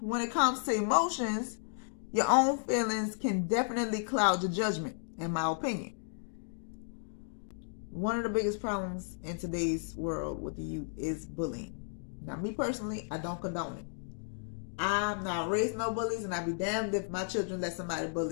when it comes to emotions, your own feelings can definitely cloud your judgment, in my opinion. One of the biggest problems in today's world with the youth is bullying. Now, me personally, I don't condone it. I'm not raising no bullies, and I'd be damned if my children let somebody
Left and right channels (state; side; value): silent; right; digital silence